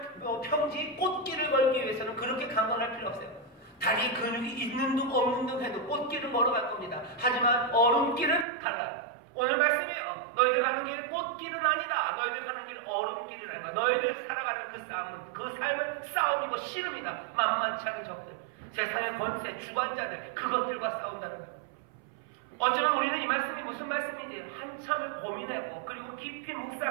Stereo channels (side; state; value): left; drops out; at 8.5 s